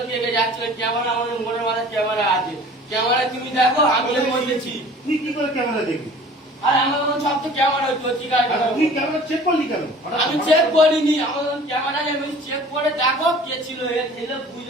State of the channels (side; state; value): both; normal; correlation 0.47